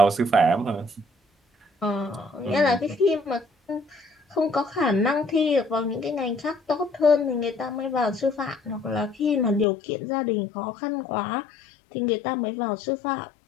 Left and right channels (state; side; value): drops out; right; at 9.7 s